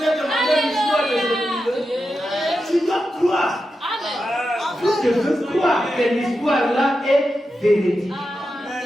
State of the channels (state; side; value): normal; both; correlation 0.89